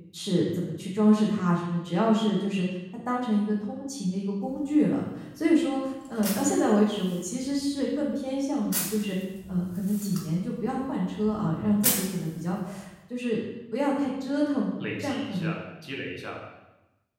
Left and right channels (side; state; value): both; identical; correlation 1.00